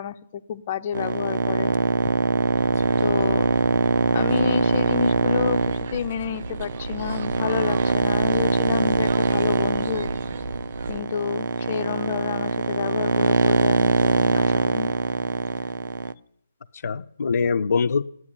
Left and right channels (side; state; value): both; inverted; correlation -0.80